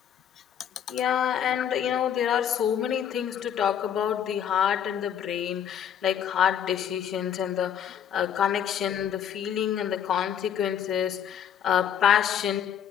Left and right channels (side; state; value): right; quieter; 9.1 dB